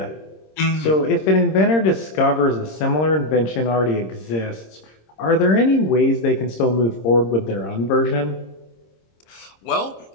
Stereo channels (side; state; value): right; late; 26 ms